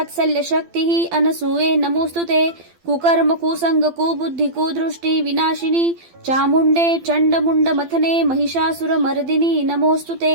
शक्तिः अनसूये नमोस्तुते. कुकर्म कुसंग कुबुद्धि कुदृष्टि विनाशिनी चामुंडे चंडमुंड मथने महिषासुरमर्दिनी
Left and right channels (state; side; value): late; left; 12 ms